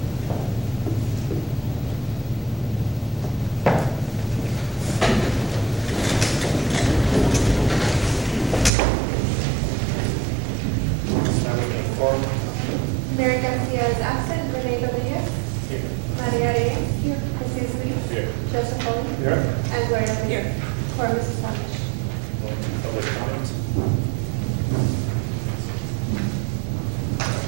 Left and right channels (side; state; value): left; drops out; at 8.7 s